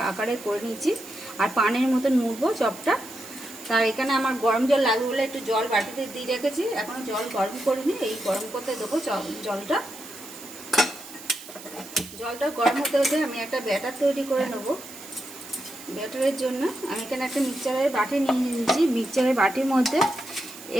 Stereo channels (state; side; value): noise; right; hiss, 15 dB below the sound